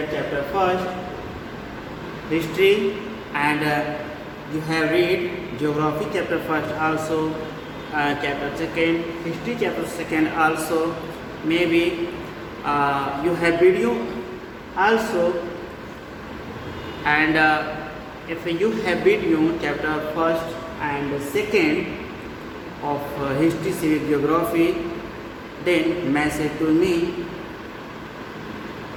chapter first, history, and you have read geography chapter first also, chapter second, history chapter second also. Maybe you have video also, and if you have video chapter first and second of history, civic, geography, then message to me.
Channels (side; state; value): both; identical; correlation 1.00